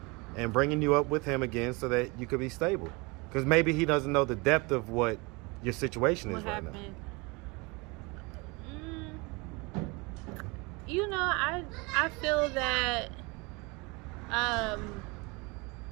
and bringing you up with him again so that you could be stable. Because maybe he doesn't know the depth of what your situation is right now. You know, I feel that I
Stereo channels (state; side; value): quieter; left; 27.1 dB